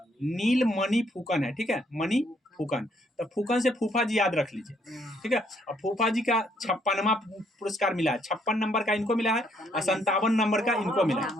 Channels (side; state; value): both; normal; correlation 0.69